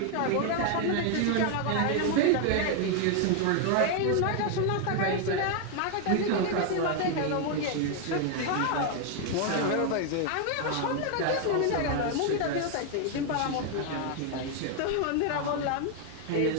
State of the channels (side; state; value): both; different; correlation 0.01